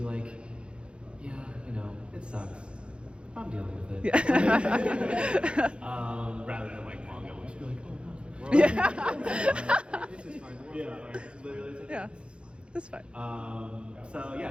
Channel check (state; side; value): late; left; 0.057 ms